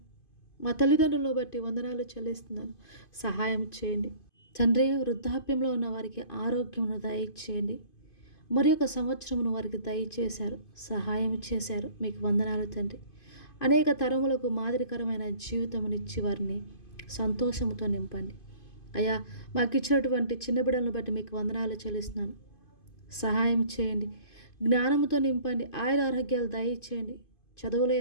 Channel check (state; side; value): late; right; 2.5 ms